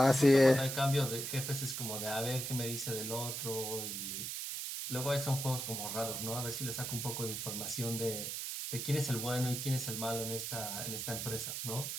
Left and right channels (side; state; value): right; noise; hiss, 4 dB below the sound